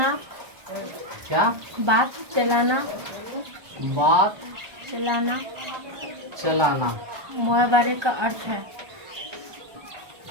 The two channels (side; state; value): left; late; 1.2 ms